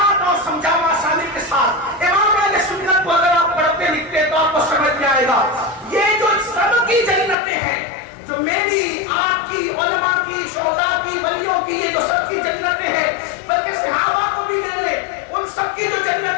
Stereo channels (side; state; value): right; drops out; at 7.4 s